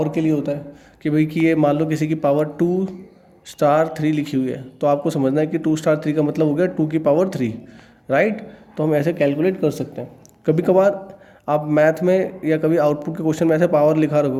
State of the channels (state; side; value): identical; both; correlation 1.00